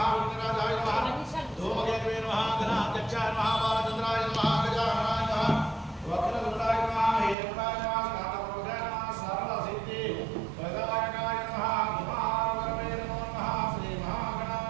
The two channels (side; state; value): left; drops out; at 7.4 s